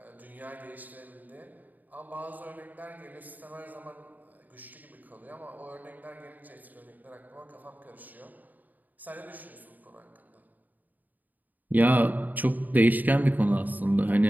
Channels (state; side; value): late; left; 0.083 ms